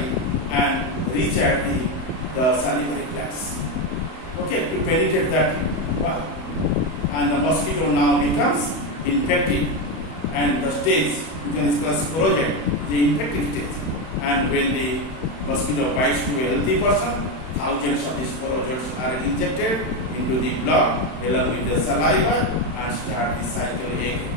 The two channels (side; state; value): right; late; 31 ms